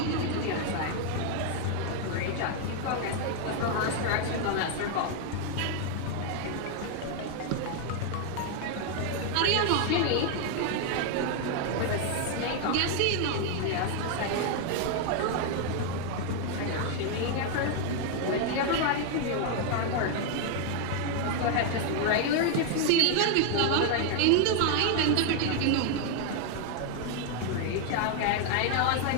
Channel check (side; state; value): both; different; correlation 0.00